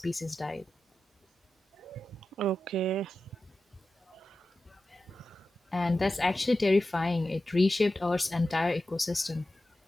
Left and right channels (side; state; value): both; normal; correlation 0.93